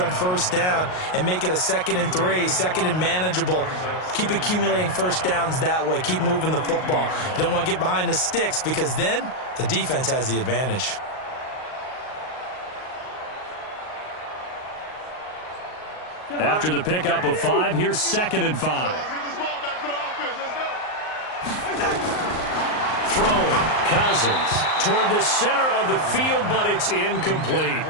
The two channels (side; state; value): right; late; 38 ms